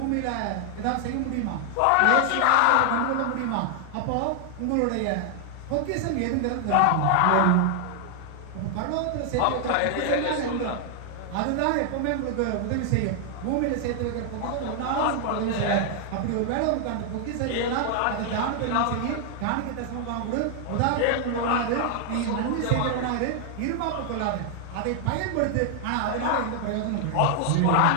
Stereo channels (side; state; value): both; different; correlation 0.00